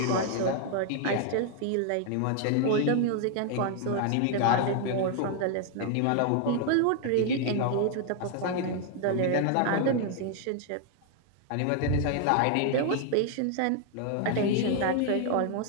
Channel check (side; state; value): both; different; correlation 0.00